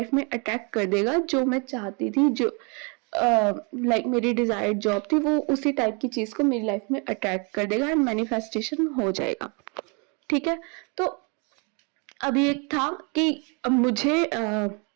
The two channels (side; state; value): left; quieter; 34.1 dB